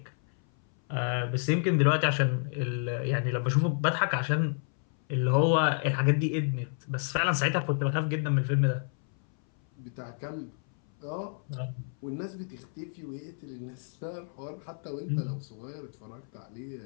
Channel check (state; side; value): silent; right; 58 dB below the other